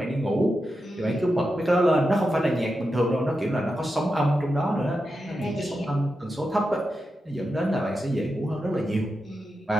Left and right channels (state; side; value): normal; both; correlation 0.89